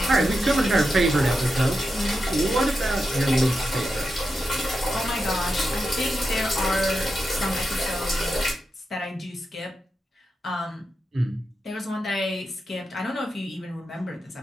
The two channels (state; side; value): normal; both; correlation 0.88